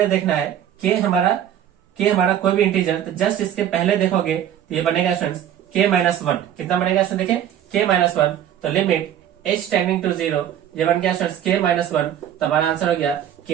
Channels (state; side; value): quieter; left; 10.4 dB